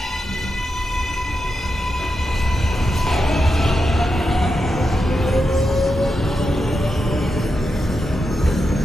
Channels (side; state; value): both; normal; correlation 0.87